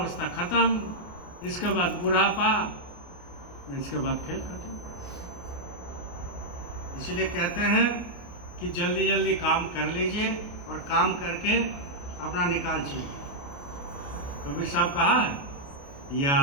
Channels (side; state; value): right; late; 28 ms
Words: खत्म, इसके बाद बुढ़ापा, इसके बाद खेल खत्म। इसीलिए कहते हैं कि जल्दी जल्दी काम कर लीजिए और काम करके अपना निकाल चाहिए। कबीर साहब कहा है, या